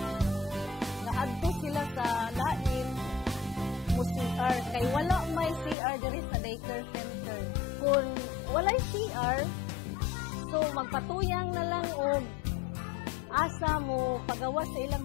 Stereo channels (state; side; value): drops out; right; at 5.8 s